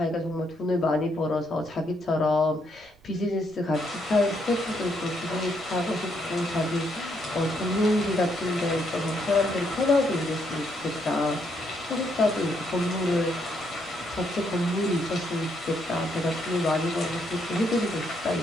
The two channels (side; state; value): right; noise; rumble, 29 dB below the sound